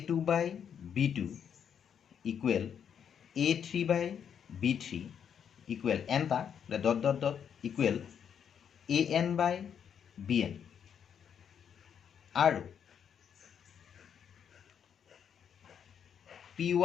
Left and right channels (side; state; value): right; quieter; 8.0 dB